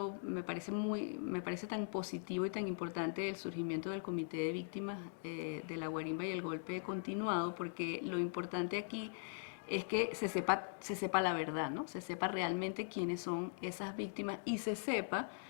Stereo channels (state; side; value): silent; right; digital silence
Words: me parece tan positivo y tan importante el surgimiento del Comité de Víctimas de la Guarimba y el golpe continuado, porque lo importante aquí es que se sepa la verdad, ¿no? Se sepa realmente quiénes son esas víctimas y se sepa